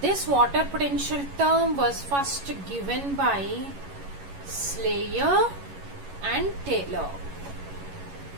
water potential term was first given by Slayer and Taylor.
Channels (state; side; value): late; left; 11 ms